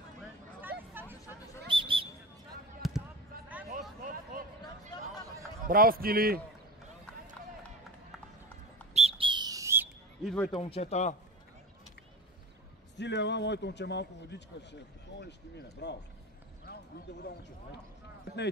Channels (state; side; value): normal; both; correlation 0.30